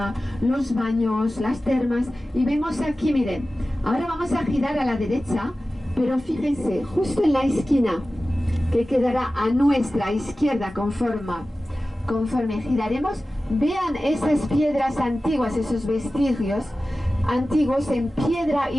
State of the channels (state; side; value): normal; both; correlation 0.95